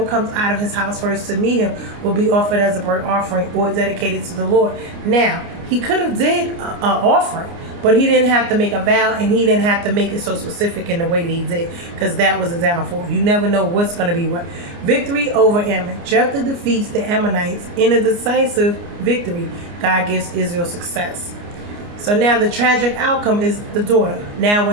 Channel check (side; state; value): left; late; 29 ms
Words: comes out of his house first to meet him will be offered as a burnt offering or dedicated to the Lord. Now, he could have did an offering, But he didn't have to make a vow, and he didn't have to make it so specific in the way that he did, because that was a downfall. You never know what's going to be what. Victory over Ammon. Jephthah defeats the Ammonites in a decisive victory. God gives Israel success. So now the tragic outcome is the daughter. Now